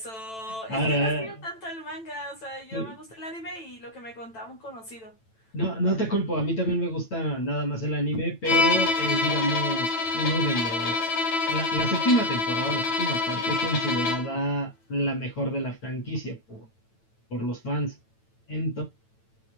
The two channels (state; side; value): late; right; 9.0 ms